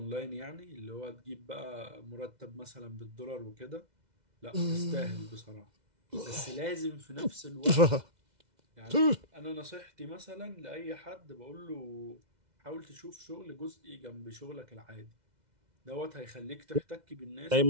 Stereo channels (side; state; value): left; late; 2.0 ms